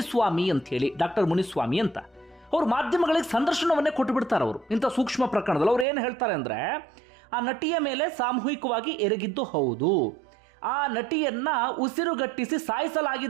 ಅಂತ ಹೇಳಿ, ಡಾಕ್ಟರ್ ಮುನಿಸ್ವಾಮಿ ಅಂತ. ಅವರು ಮಾಧ್ಯಮಗಳಿಗೆ ಸಂದರ್ಶನವನ್ನೇ ಕೊಟ್ಟು ಬಿಡ್ತಾರೆ. ಅವರು ಇಂಥ ಸೂಕ್ಷ್ಮ ಪ್ರಕರಣದಲ್ಲಿ ಅವ್ರು ಏನು ಹೇಳ್ತಾರೆ ಅಂದರೆ, ಆ ನಟಿಯ ಮೇಲೆ ಸಾಮೂಹಿಕವಾಗಿ ಎರಗಿದ್ದು ಹೌದು, ಆ ನಟಿಯನ್ನ ಉಸಿರುಗಟ್ಟಿಸಿ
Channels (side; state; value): left; drops out; at 5.9 s